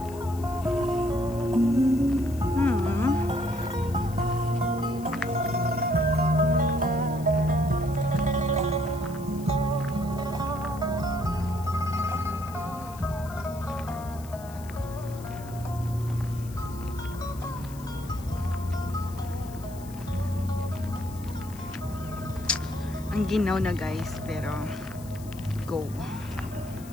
Ang ginaw na guys, pero go.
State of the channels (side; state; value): left; noise; hiss, 20 dB below the sound